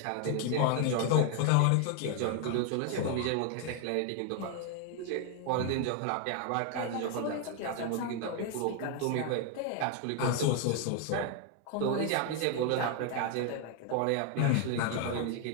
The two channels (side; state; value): both; different; correlation 0.00